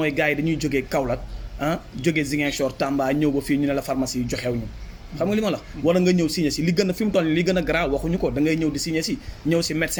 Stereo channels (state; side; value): identical; both; correlation 1.00